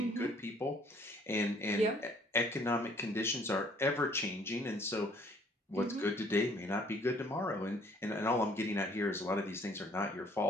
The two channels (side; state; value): both; normal; correlation 0.59